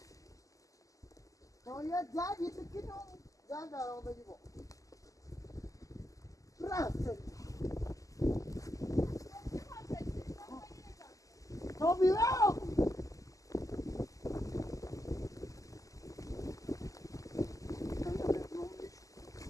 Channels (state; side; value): late; right; 0.16 ms